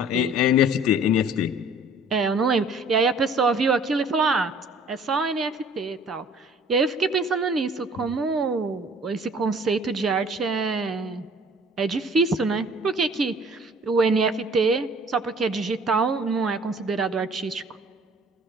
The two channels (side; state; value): both; normal; correlation 0.52